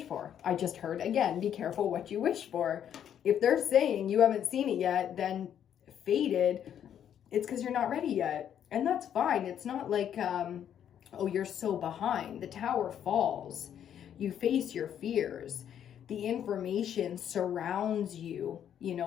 for. I just heard again, be careful what you wish for. If they're saying you haven't seen it yet, then fated, it's because you're not ready yet. And that's fine. It's not like, oh, you're so behind. The tower falls. You face your fears. The information surrounds you, you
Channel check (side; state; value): right; quieter; 9.5 dB